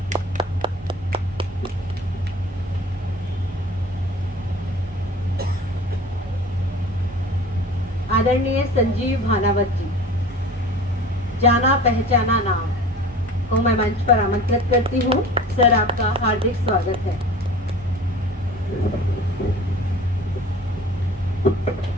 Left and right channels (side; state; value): both; normal; correlation 0.41